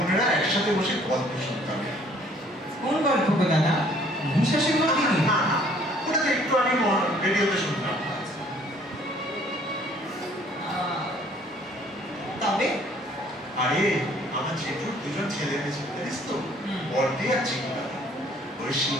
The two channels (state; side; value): normal; both; correlation 0.59